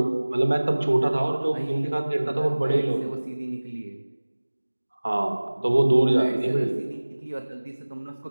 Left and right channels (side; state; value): both; inverted; correlation -1.00